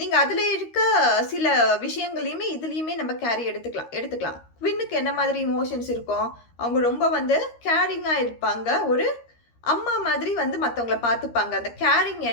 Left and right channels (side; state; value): right; late; 13 ms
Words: அதில் இருக்க சில விஷயங்களையுமே இதுலேயுமே நம்ம கேரி எடுத்துக்கலாம். குவின்னுக்கு என்ன மாதிரி இமோஷன்ஸ் இருக்கும், அவங்க ரொம்ப கேரிங்காக இருப்பாங்க, ஒரு அம்மா மாதிரி மற்றவங்கள பார்த்துப்பாங்க, அந்த கேரிங்